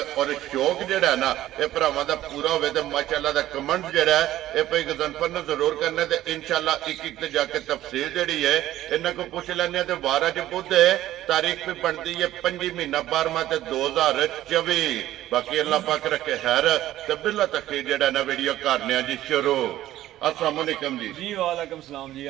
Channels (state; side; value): quieter; left; 14.0 dB